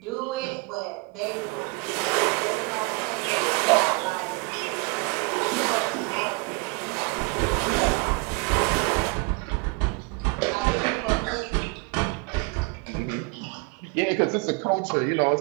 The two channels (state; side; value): quieter; left; 28.3 dB